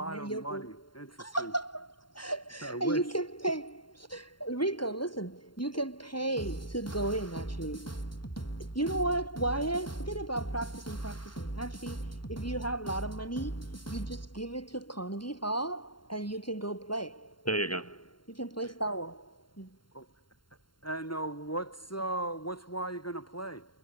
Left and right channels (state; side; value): late; right; 0.72 ms